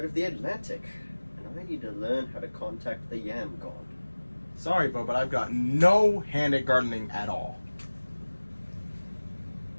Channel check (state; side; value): inverted; both; correlation -1.00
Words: of the Atlantic, and I need to learn how to contact the Yam God. Sorry, Bo, but I've got no hand at gardening at all.